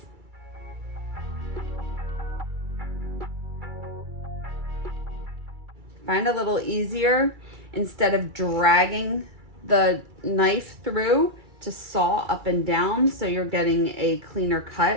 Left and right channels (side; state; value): left; late; 2.3 ms